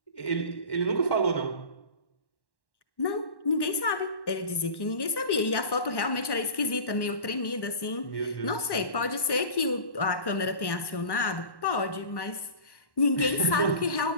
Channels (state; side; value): late; right; 1.1 ms